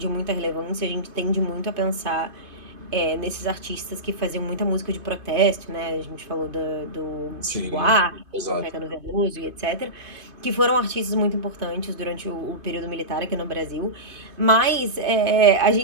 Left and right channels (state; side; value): late; left; 2.5 ms